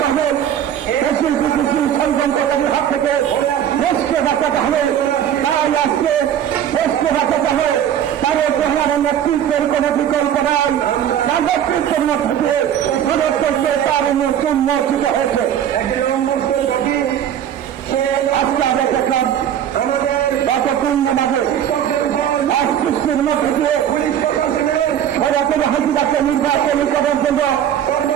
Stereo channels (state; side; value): quieter; left; 9.9 dB